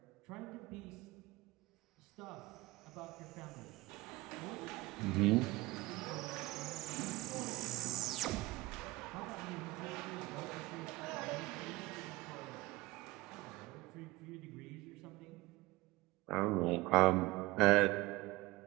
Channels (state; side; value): quieter; left; 21.0 dB